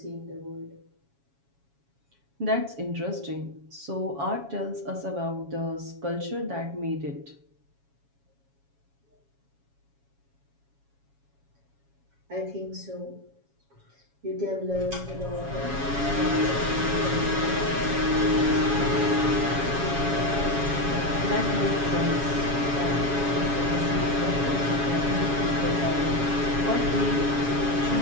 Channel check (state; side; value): late; left; 7.2 ms